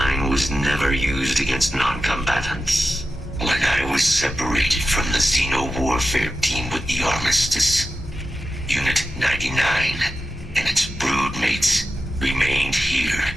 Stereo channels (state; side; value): normal; both; correlation 0.91